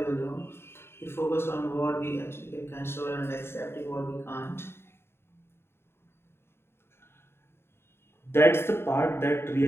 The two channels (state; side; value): late; right; 0.12 ms